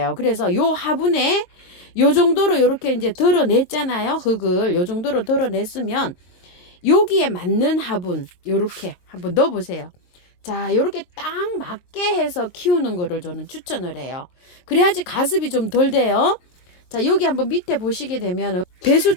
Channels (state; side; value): late; right; 22 ms